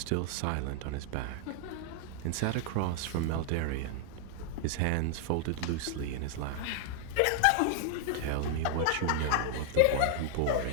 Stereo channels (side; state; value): both; different; correlation 0.00